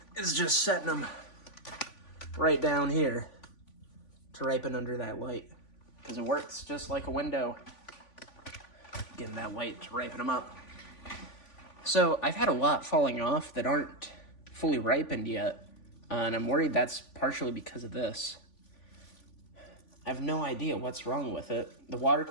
is just setting them right down here to ripen under that light. Because it works just like a window. Getting that light to ripen them up. So I've had a lot falling off that aren't fully ripened yet, and I'm worried that's partially because of this. I have no idea what's wrong with it. The water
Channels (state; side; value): late; right; 3.5 ms